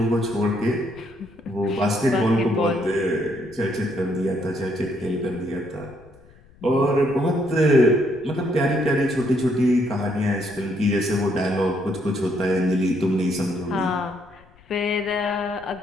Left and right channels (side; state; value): left; noise; rumble, 26 dB below the sound